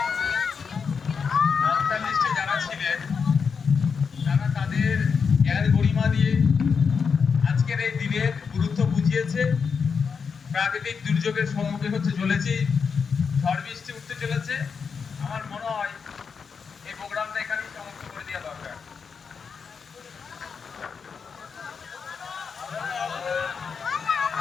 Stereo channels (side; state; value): right; quieter; 5.9 dB